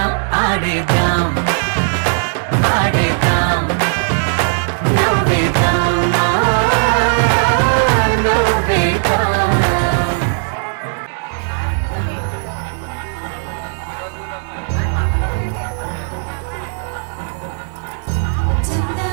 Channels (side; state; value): left; silent; 62 dB below the other